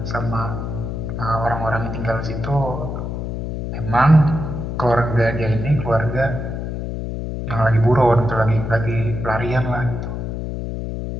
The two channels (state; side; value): noise; left; hum, 4 dB below the sound